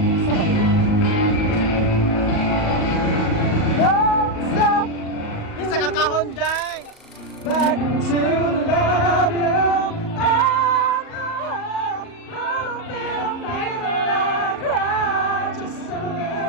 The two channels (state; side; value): late; right; 37 ms